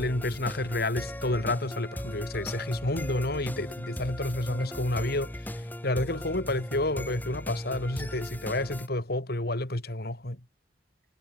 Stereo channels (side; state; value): both; normal; correlation 0.43